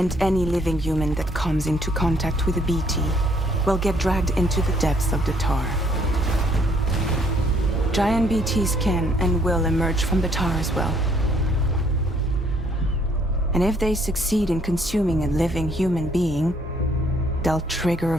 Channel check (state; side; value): normal; both; correlation 0.65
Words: any living human that comes into contact with a BT will get dragged into the depths of the tar. Giant BTs can and will emerge from the tar as well. And if they succeed in consuming a living human being, they'll trigger a